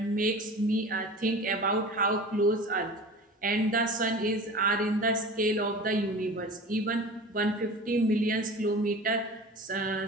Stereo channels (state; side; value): normal; both; correlation 0.37